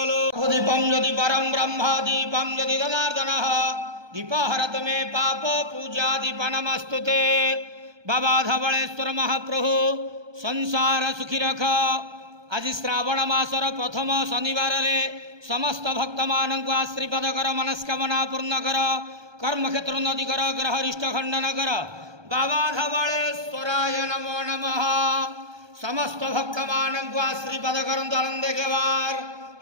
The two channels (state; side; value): late; left; 1.2 ms